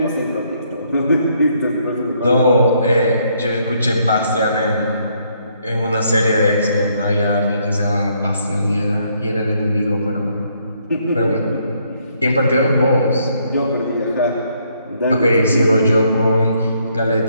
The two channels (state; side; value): inverted; both; correlation -0.71